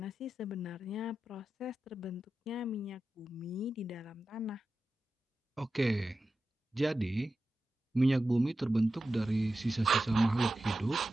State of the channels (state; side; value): normal; both; correlation 0.92